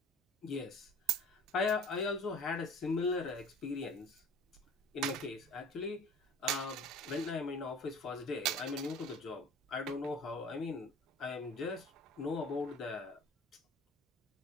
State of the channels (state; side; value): normal; both; correlation 0.44